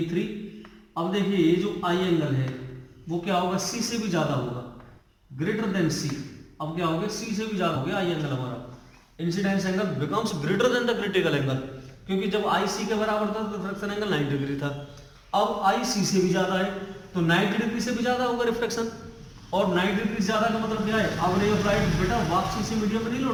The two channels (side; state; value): both; identical; correlation 1.00